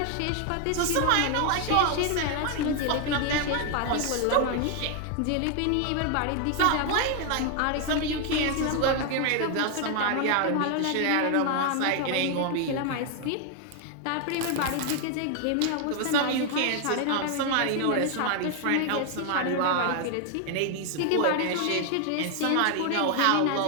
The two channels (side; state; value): both; different; correlation 0.00